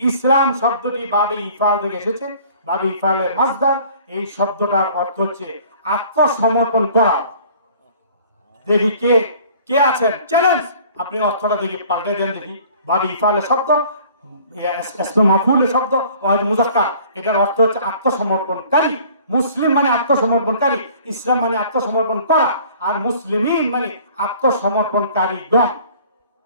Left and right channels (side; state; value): both; inverted; correlation -0.51